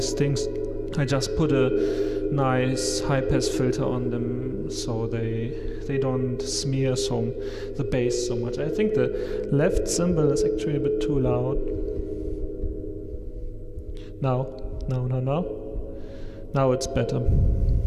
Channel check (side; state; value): both; identical; correlation 1.00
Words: things, I just put a nice high pass filter on them so they don't smear the bass so much. I think the left cymbal is actually a bit too loud. Now it's better.